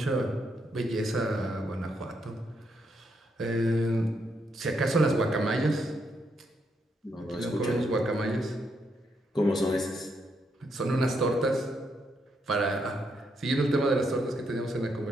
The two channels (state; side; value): normal; both; correlation 0.78